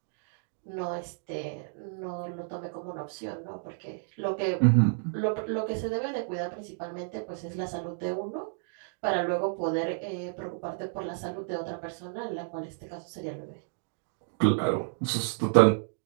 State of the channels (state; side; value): silent; left; digital silence